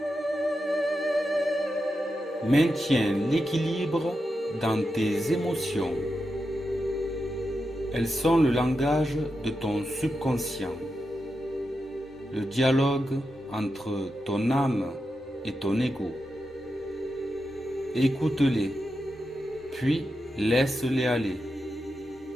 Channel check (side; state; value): both; normal; correlation 0.88